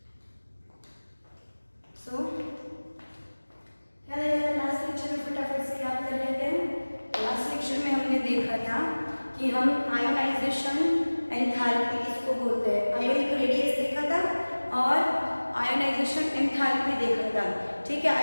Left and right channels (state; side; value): inverted; both; correlation -1.00